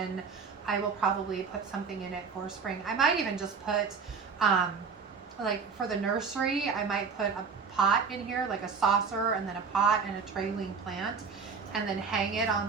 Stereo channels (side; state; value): left; quieter; 5.6 dB